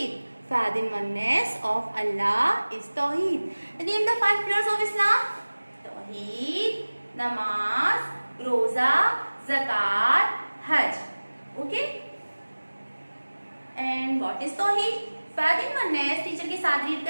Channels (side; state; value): both; inverted; correlation -1.00